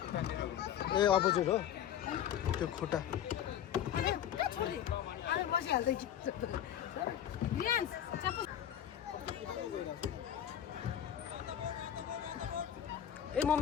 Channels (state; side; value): quieter; right; 10.2 dB